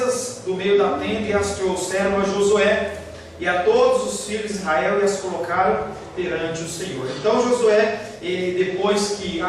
do meio da tenda e as trouxeram a Josué e a todos os filhos de Israel e as colocaram perante o Senhor. Então Josué, ele, depois que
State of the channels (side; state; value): both; identical; correlation 1.00